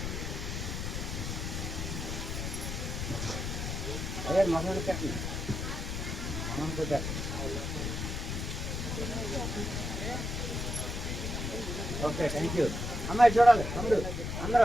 అదే మగవాడిని కట్టండి. Okay, thank you. అమ్మాయి చూడాలి తమ్ముడు,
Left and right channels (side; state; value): left; noise; rumble, 3 dB below the sound